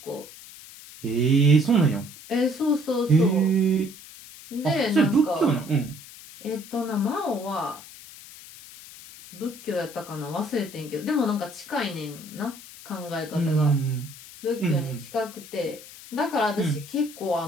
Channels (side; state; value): left; noise; hiss, 17 dB below the sound